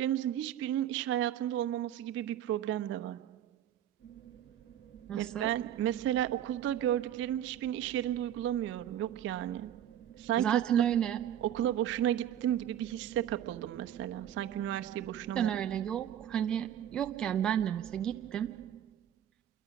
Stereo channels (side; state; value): left; quieter; 10.7 dB